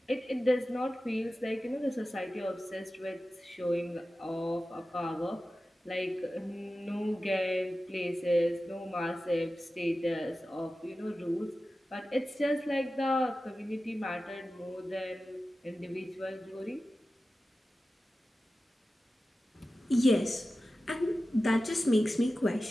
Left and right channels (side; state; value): both; normal; correlation 0.94